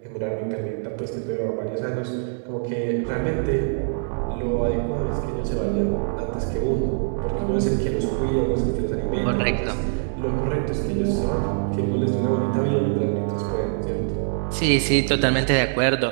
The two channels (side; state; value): left; silent; digital silence